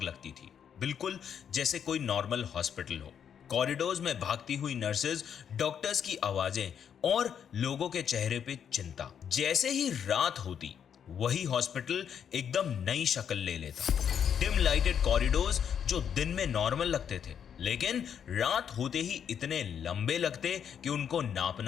लगती थी, बिल्कुल जैसे कोई नॉर्मल हॉस्पिटल हो। कॉरिडोर्स में भागती हुई नर्सेज, डॉक्टर्स की आवाजें और लोगों के चेहरे पे चिंता। जैसे ही रात होती वही हॉस्पिटल एकदम नई शक्ल ले लेता। डिम लाइटेड कॉरिडोर्स जो दिन में नॉर्मल लगते थे लेकिन रात होते ही इतने लंबे लगते कि उनको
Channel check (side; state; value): right; quieter; 8.2 dB